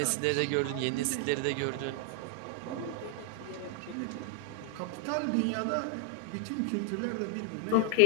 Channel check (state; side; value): different; both; correlation 0.00